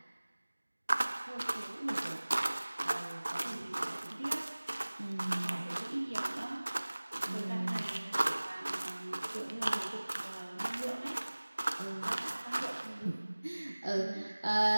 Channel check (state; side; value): inverted; both; correlation -1.00